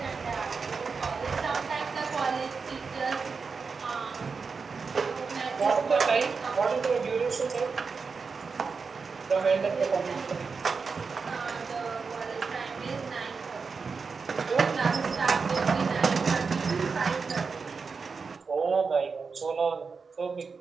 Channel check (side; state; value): left; quieter; 5.0 dB